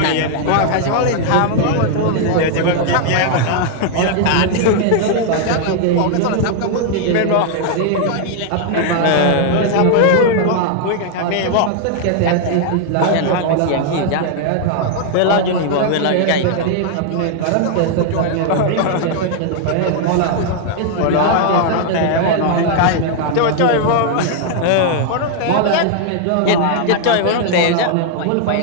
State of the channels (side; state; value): both; different; correlation 0.00